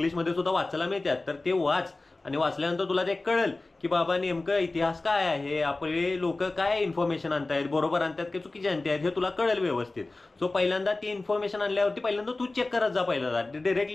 सुद्धा वाचायला मिळतात. तर ते वाच आणि वाचल्यानंतर तुला ते कळेल की बाबा नेमकं इतिहास काय आहे, आपले लोक काय इन्फॉर्मेशन आणतायत, बरोबर आणतात की चुकीचे आणतायत हे तुला कळेल व्यवस्थित. सो पहिल्यांदा ती इन्फॉर्मेशन आणल्यावरती पहिल्यांदा तू चेक करत जा. पहिल्यांदा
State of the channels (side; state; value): right; quieter; 3.2 dB